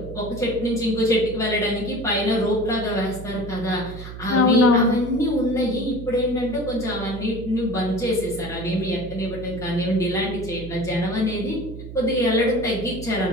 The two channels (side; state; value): right; noise; hum, 11 dB below the sound